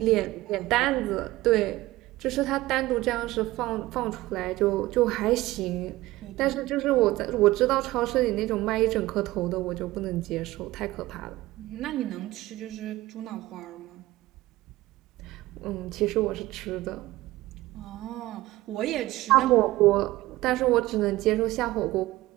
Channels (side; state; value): left; quieter; 17.9 dB